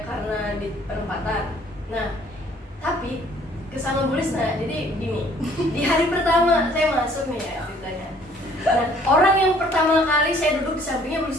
karena di perempatan. Nah, tapi kesama Bu Risna, jadi gini, di hari pertama saya masuk nih ya ceritanya. Nah, orang yang pertama kali saya duduk di sampingnya Bu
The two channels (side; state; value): both; normal; correlation 0.58